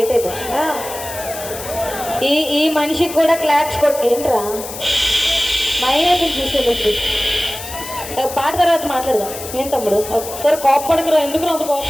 అయిపోయి ఈ మనిషికి కూడా క్లాప్స్ ఏంట్రా మైనస్ చూసేటట్టు పాట తర్వాత మాట్లాడదాం. ఏం తమ్ముడు ఒకసారి కోపడకురా, ఎందుకు అంత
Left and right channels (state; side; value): noise; left; hiss, 10 dB below the sound